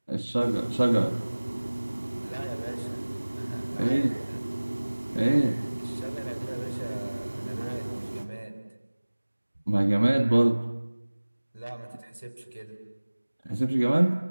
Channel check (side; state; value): both; inverted; correlation -1.00